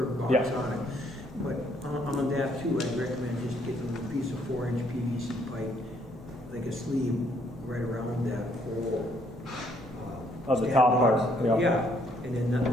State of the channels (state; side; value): normal; both; correlation 0.67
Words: box Yeah. on it. But on that too, I'd recommend just getting a piece of 4-inch PVC pipe, like a sleeve, right around that whole. Of the stand top box. part, yeah. Yeah, and then